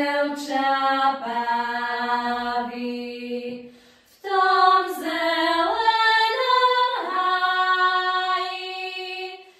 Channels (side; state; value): both; identical; correlation 1.00